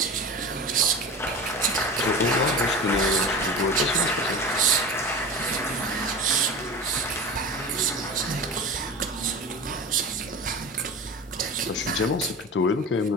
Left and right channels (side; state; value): both; normal; correlation 0.31